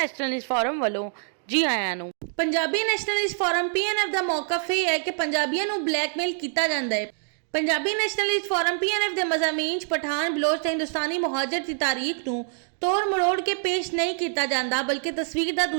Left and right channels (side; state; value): left; silent; digital silence